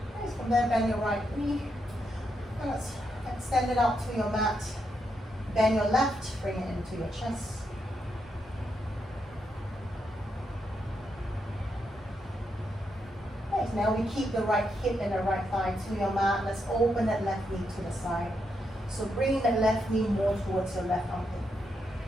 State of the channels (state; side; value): normal; both; correlation 0.81